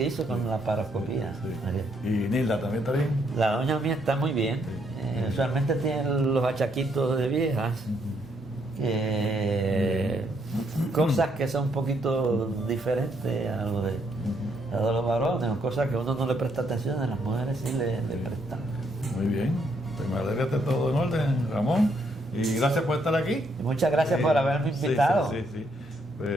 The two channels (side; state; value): both; normal; correlation 0.73